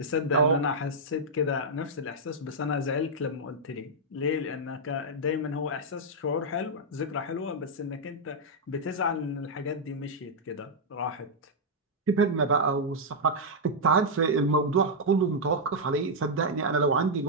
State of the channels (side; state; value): both; normal; correlation -0.05